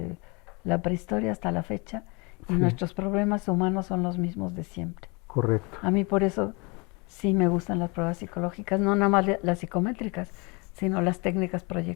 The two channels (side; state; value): right; quieter; 29.2 dB